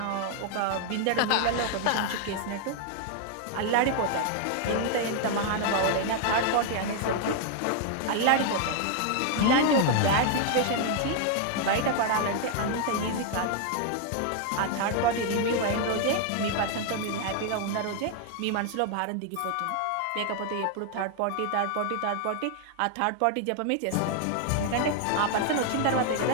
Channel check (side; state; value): both; different; correlation 0.00